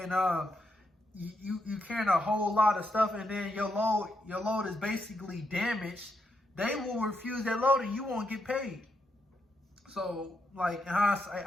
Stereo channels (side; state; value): both; normal; correlation 0.81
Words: you carrying a whole lot of stuff, and then your load is basically damaged, they will refuse that load and you won't get paid. So like in hindsight,